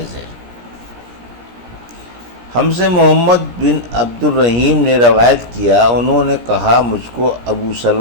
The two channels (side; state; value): left; late; 17 ms